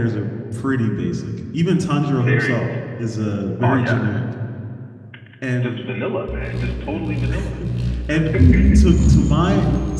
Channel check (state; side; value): identical; both; correlation 1.00